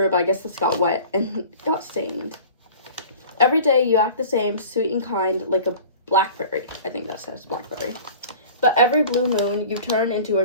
but I guess this got wet and got stained. Every day you act the same, sweet and kind, like a blackberry. I think that says blackberry. But every blue moon you turn into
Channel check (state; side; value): inverted; both; correlation -0.42